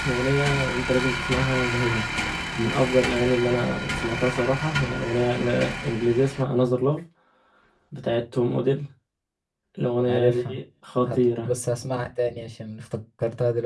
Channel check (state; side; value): identical; both; correlation 1.00